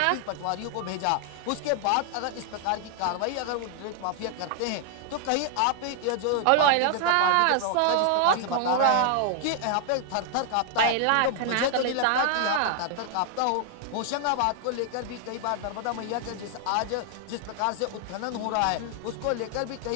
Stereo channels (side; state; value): both; different; correlation 0.00